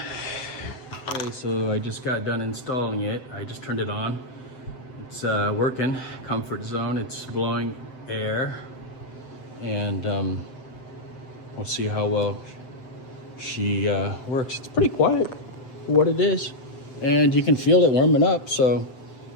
Okay, so I just got done installing it. I just turned it on. It's working, comfort zone. It's blowing air. And we'll see how well she works. It's pretty quiet for what it is. And you can feel it warming up, so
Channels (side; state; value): right; late; 7.8 ms